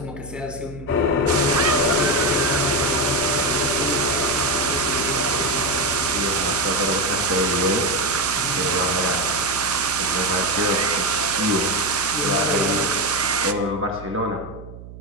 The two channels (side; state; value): right; noise; hum, 15 dB below the sound